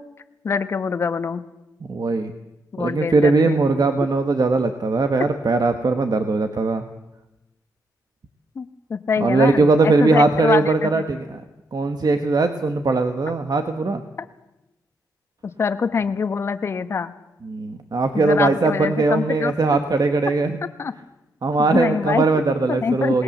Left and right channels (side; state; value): both; normal; correlation 0.75